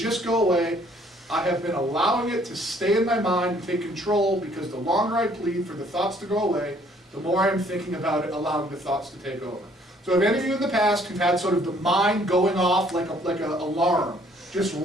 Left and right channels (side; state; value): both; normal; correlation 0.61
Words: go away, I have been allowing it to stay in my mind and take control, because the longer I plead for the thoughts to go away, the more I am thinking about it, allowing the thoughts to take over. So if any of you in the past who've had sort of the mind going off like an alarm, just